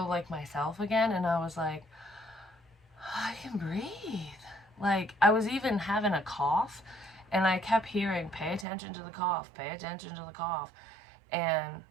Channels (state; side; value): drops out; left; at 8.7 s